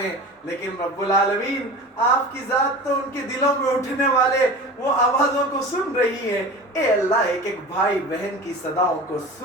ہیں لیکن رب العالمین آپ کی ذات تو ان کے دلوں میں اٹھنے والے وہ آوازوں کو سن رہی ہے. اے اللہ ایک ایک بھائی بہن کی صداؤں کو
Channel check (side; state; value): both; normal; correlation 0.34